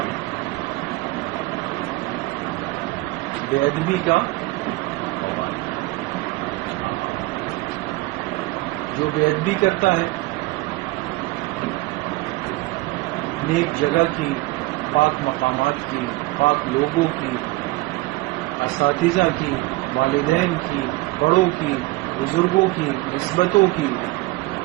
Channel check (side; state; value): left; quieter; 20.8 dB